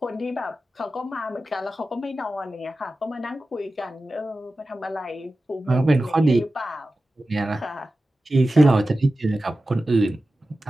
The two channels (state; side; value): normal; both; correlation 0.94